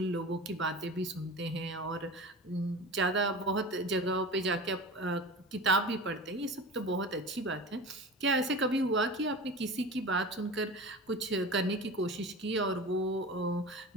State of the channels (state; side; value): normal; both; correlation 0.32